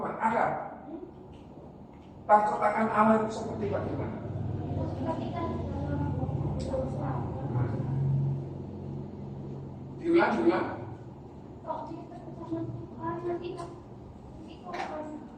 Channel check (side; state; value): both; identical; correlation 1.00